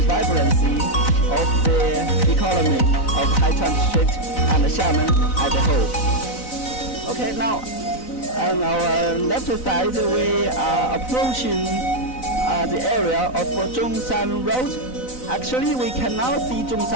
vibrancy of the economy of Haichuan district and Xiamen as a whole. Okay, now on our left side, we are approaching the area of Zhongshan Road. Actually, we cannot see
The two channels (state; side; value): late; right; 4.0 ms